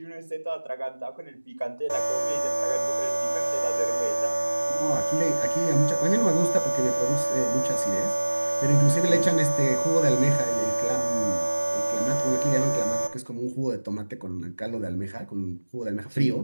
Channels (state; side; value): inverted; both; correlation -1.00